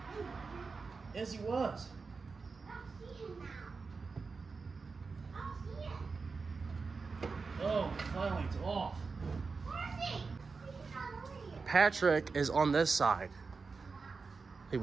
Yes, he was. I don't see him now. I don't see him. Oh, finally it's off. Where is he? He's not over here. Patrick is on this side. He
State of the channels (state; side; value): quieter; left; 4.6 dB